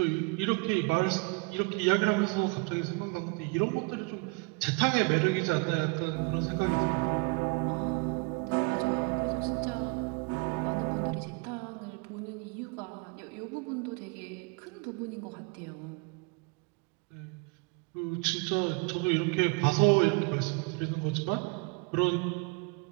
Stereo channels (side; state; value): left; quieter; 30.3 dB